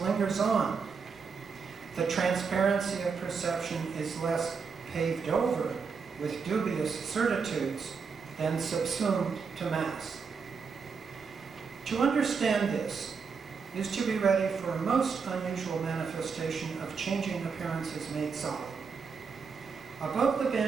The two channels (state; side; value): quieter; left; 5.5 dB